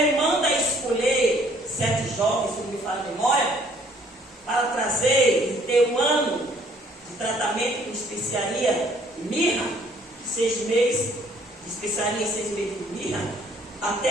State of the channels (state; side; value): normal; both; correlation 0.61